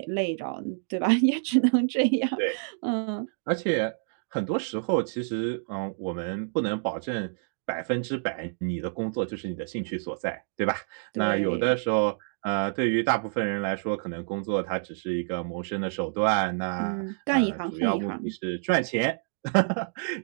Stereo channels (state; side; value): silent; left; digital silence